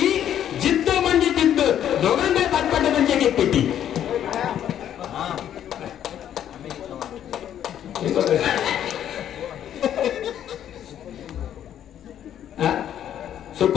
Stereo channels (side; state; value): right; quieter; 10.4 dB